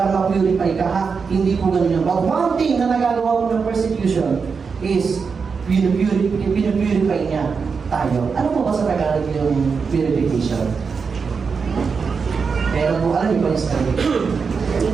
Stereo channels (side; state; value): left; quieter; 5.4 dB